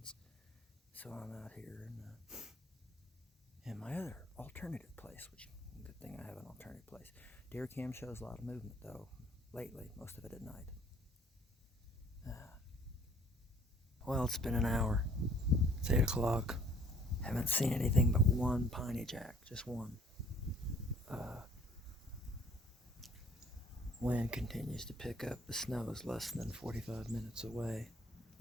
so I'm out here in my other alternative place, which good thing I have an alternative place. Deer cam shows a lot of movement though lately, most of it at night. Well, it's been an hour. It's 8 o'clock. Haven't seen anything but one piney jack, just one. Wind continues to pick up. The snow is less than 45 minutes away, at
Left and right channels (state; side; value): normal; both; correlation 0.57